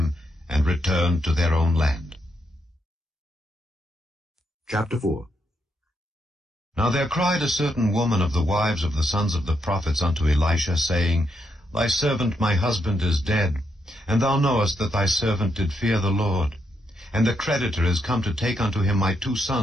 and returned to their own land. Chapter 4. Now there cried a certain woman of the wives of the sons of the prophets unto Elisha, saying, Thy servant my husband is dead, and thou knowest that thy servant did fear the Lord. And the creditor is come to take unto him my 2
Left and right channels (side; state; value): both; normal; correlation 0.79